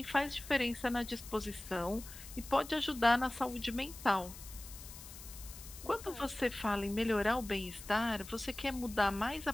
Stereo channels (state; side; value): noise; left; hiss, 14 dB below the sound